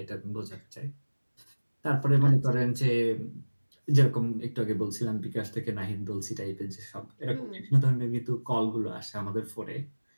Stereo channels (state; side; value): inverted; both; correlation -1.00